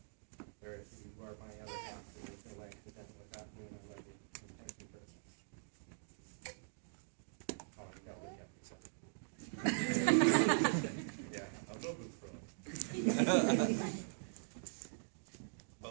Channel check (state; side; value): silent; left; digital silence